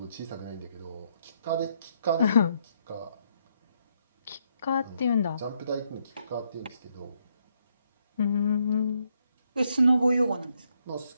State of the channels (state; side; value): inverted; both; correlation -0.75